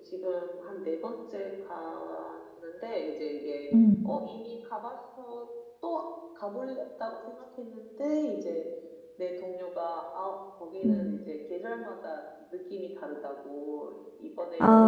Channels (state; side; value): identical; both; correlation 1.00